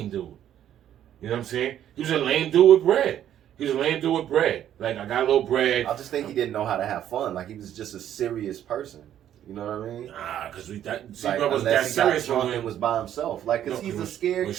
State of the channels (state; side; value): quieter; left; 10.8 dB